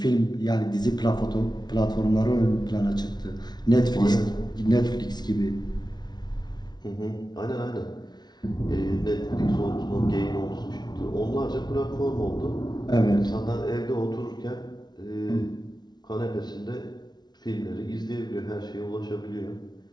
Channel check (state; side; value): late; right; 0.20 ms